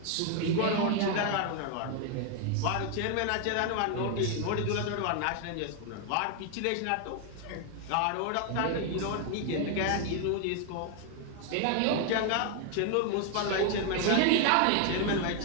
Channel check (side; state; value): both; different; correlation 0.00